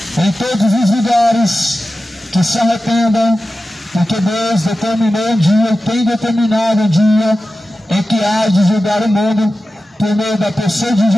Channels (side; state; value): both; normal; correlation 0.94